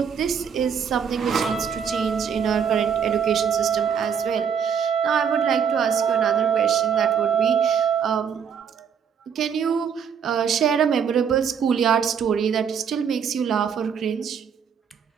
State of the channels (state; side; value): quieter; left; 7.4 dB